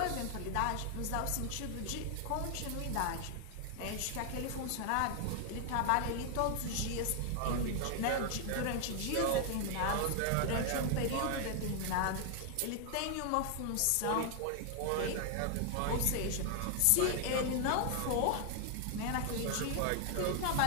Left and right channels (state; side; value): different; both; correlation 0.00